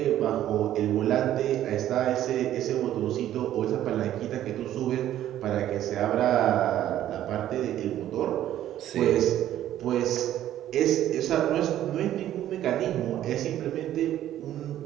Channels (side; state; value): left; quieter; 12.3 dB